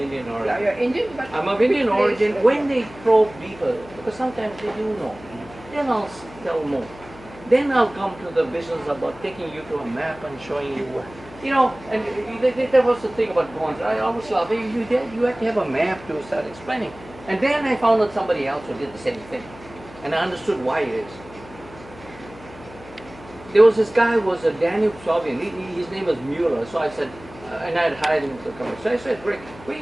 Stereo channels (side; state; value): left; noise; hum, 19 dB below the sound